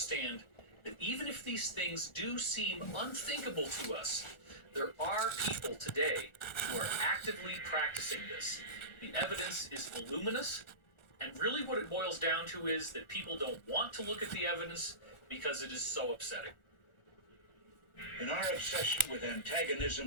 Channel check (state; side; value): late; right; 1.4 ms